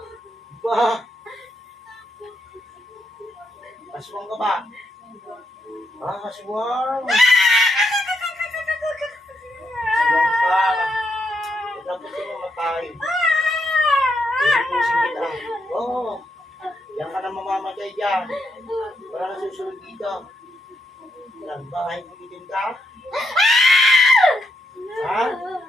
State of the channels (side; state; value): both; normal; correlation 0.80